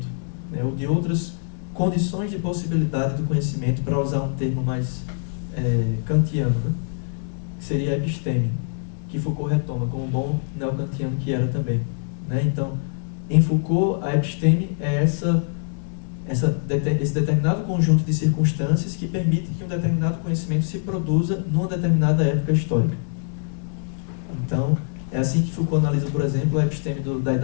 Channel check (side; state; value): right; silent; 63 dB below the other